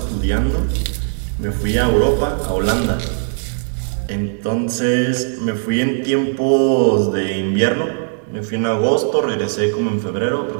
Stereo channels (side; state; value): left; silent; digital silence